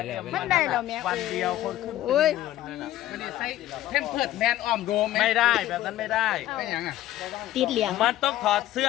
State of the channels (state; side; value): quieter; right; 14.1 dB